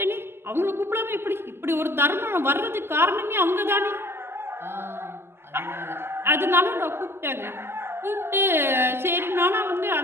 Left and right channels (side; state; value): left; late; 0.12 ms